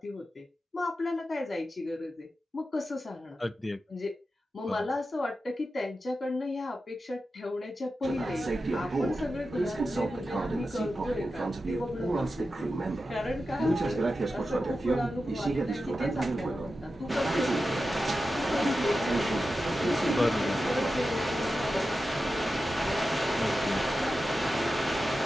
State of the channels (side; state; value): both; normal; correlation 0.91